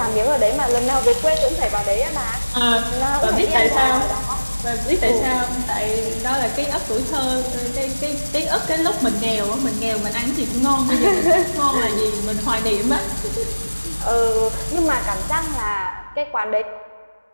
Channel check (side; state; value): both; inverted; correlation -1.00